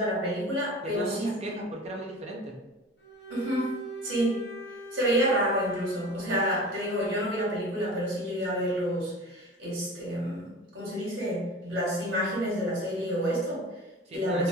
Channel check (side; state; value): both; normal; correlation 0.37